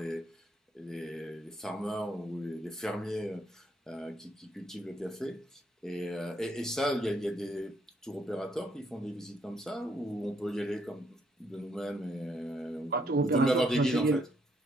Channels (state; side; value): normal; both; correlation 0.73